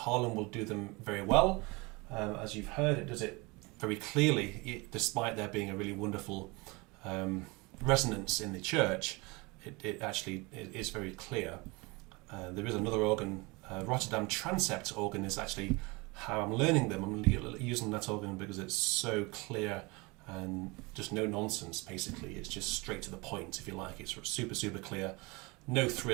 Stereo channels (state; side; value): quieter; left; 25.9 dB